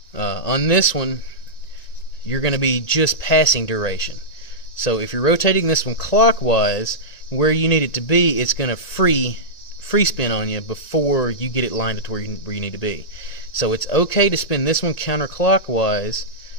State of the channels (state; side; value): late; right; 1.9 ms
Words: On this one, you're going to be just passing duration. So if you're rotating this one clockwise, where you need it to be, it's going to free spin on you before you get it lined up to where you need to be. So it's okay to spin this one counterclockwise.